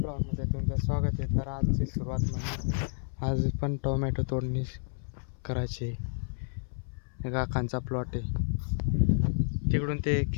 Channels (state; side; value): silent; right; 58 dB below the other